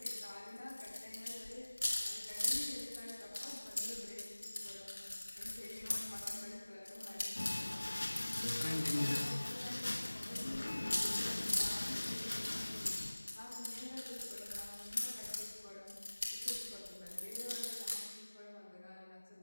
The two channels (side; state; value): both; inverted; correlation -1.00